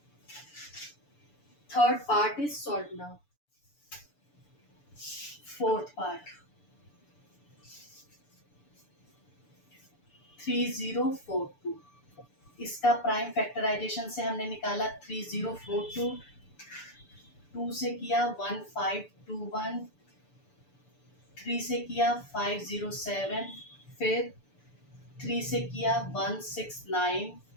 Third part is solve now. Fourth part 3042, इसका प्राइम फैक्टराइजेशन से हमने निकाला 3042, 2 से किया 1521, 3 से किया 507, फिर 3 से किया 169,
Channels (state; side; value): late; right; 6.9 ms